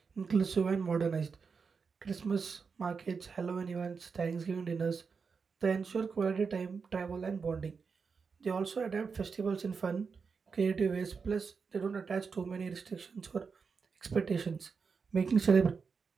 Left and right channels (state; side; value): quieter; left; 5.4 dB